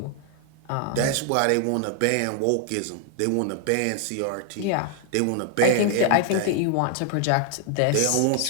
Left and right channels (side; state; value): both; different; correlation 0.00